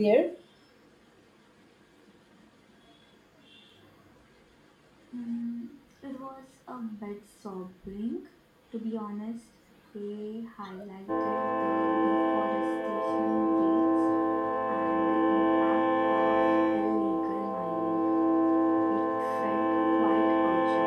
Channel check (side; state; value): both; identical; correlation 1.00